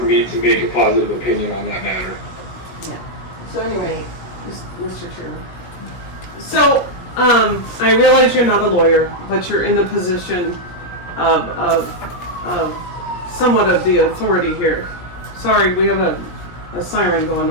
me to make a positive opinion on that matter. Yeah. So anyway, Mr. Chairman. So, I realize you're not a lawyer, but you're in the position of somewhat of the authority here. Sorry, we have a siren going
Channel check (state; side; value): late; right; 17 ms